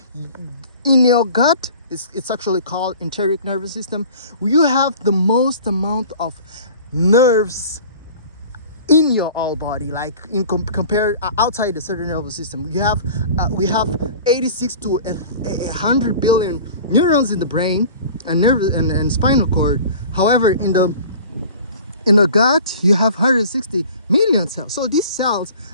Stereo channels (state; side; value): inverted; both; correlation -0.43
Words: in your gut, it's actually called enteric nervous system, you have the most amount of nerves in your whole body, like in compared outside the central nervous system. We have 86 to 100 billion neurons in the brain and nerve and spinal cord. However, in the gut, you have 160 million cells. So these cells